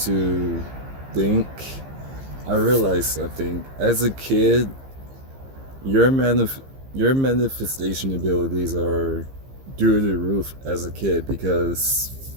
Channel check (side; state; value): left; late; 15 ms